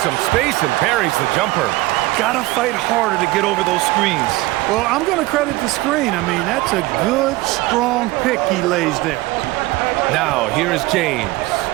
some space and parries the jumper. Gotta fight harder to get over those screens. Well, I'm going to credit the screen. I mean, that's a good, strong pick he lays there. Now, here is James.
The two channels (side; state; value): left; quieter; 19.6 dB